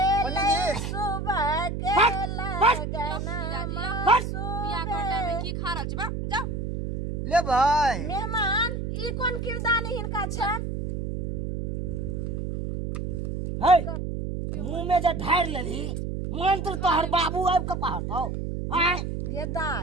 जी सुबह के लगन बियाह के टाइम में की खा रहल छी। जाओ ले भाई मेहमान ई कोन किरदानी हिनका छन। मुंह में जे ढार लेली मंत्र तोहर बाबू आब के पढ़तौ।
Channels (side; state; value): right; noise; hum, 4 dB below the sound